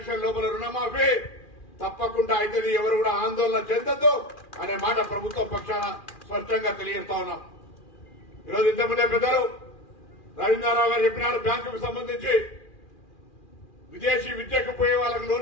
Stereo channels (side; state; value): right; late; 2.4 ms